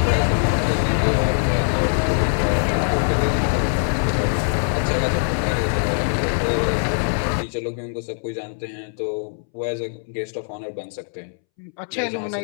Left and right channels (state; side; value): silent; right; 64 dB below the other